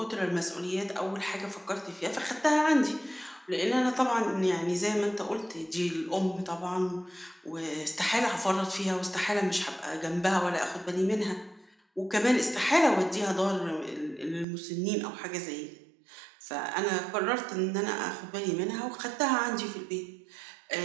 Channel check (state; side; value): drops out; left; at 14.5 s